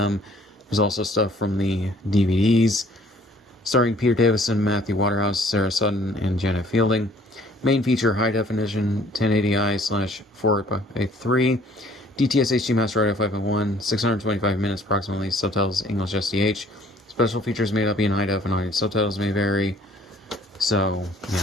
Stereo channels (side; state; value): both; normal; correlation 0.57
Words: There's also stuff from the DVDs, starring Peter Davison, Matthew Waterhouse, Sarah Sutton, and Janet Fielding. Main feature, high definition, 1080i/4x3, DTS HD Master Audio 5.1, 625 minutes approximately, subtitles English SDH. Special features may not be in high def and audience subtitles may vary. So,